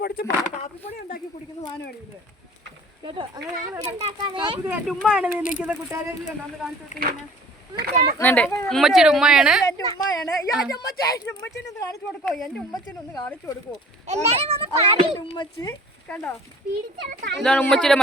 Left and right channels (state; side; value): normal; both; correlation 0.49